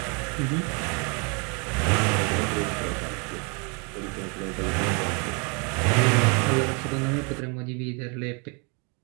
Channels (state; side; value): quieter; left; 33.7 dB